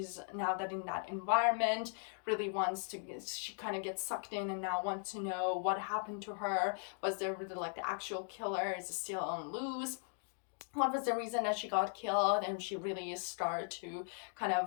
now that in that environment really she kind of gets sucked in and now wants to know what happened to her. Was there really like the actual killer? Is it still on loose? What was the reason that she got killed? And she really started to kind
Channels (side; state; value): right; silent; 52 dB below the other